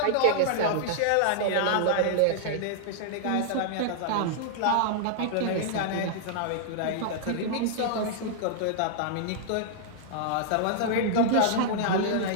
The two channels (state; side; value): different; both; correlation -0.01